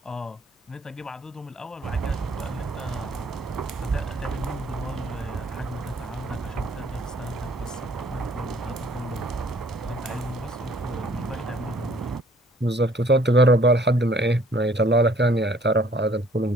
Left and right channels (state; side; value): normal; both; correlation 0.59